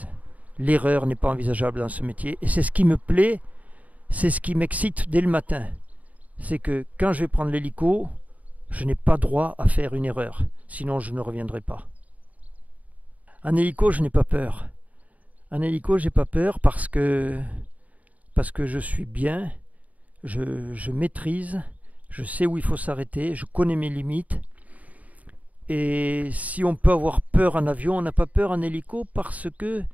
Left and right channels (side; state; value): left; late; 0.072 ms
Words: L'erreur n'est pas envisageable dans ce métier. Et c'est ce qui me plaît, c'est ce qui m'excite dès le matin. C'est que quand je vais prendre l'hélico, je n'ai pas droit à faire une erreur. Sinon, je ne reviendrai pas. En hélico, je n'ai pas peur. En hélico, j'ai pas peur parce que je suis bien, je maîtrise, je sais où il faut s'arrêter, je connais mes limites. Et si on peut avoir peur en avion, on n'a pas peur en hélico parce que